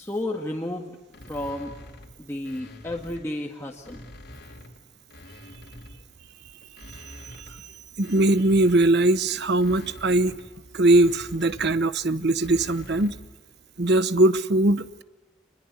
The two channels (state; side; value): normal; both; correlation 0.50